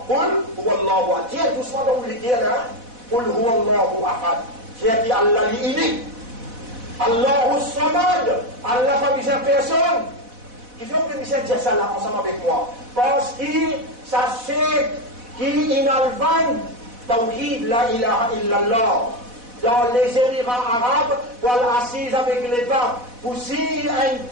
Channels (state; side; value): late; left; 4.1 ms